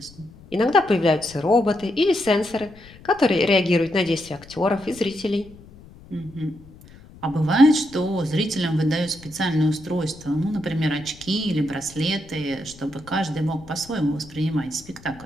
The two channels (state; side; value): noise; left; rumble, 21 dB below the sound